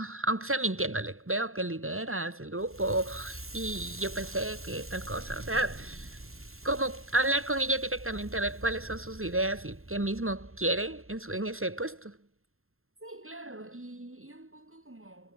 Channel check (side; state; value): left; late; 0.61 ms